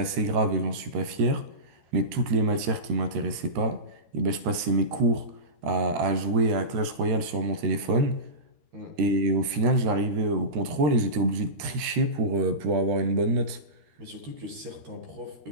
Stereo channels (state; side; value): late; left; 13 ms